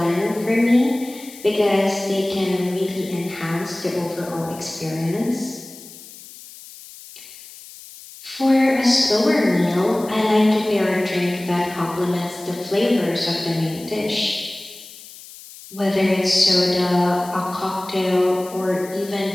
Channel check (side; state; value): left; noise; hiss, 18 dB below the sound